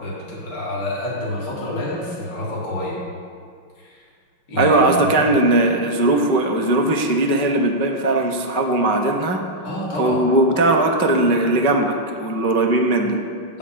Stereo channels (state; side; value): late; right; 5.4 ms